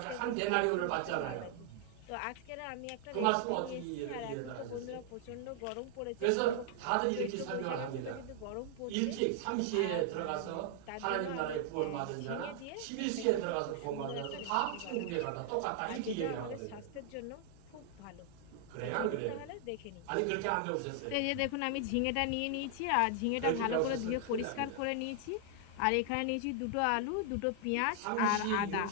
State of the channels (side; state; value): both; different; correlation 0.00